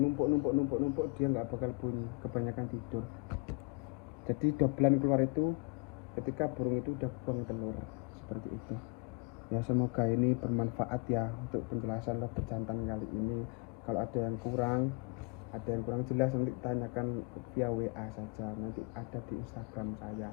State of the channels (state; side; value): quieter; right; 29.7 dB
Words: numpuk dia nggak bakal bunyi, kebanyakan tidur. Jadi dobelan keluar itu ketika burung itu udah buang telur, seperti itu ya. Semoga ini bermanfaat ya untuk penjelasan lobet jantan kali ini. Kalau ada yang kurang jelas, nanti tanyakan via WA saja, nanti ada di Instagram saya.